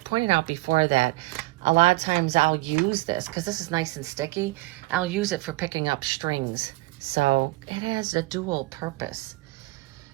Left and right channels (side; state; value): left; quieter; 20.9 dB